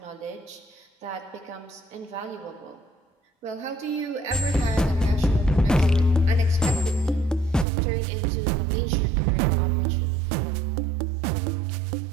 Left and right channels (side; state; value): left; drops out; at 7.7 s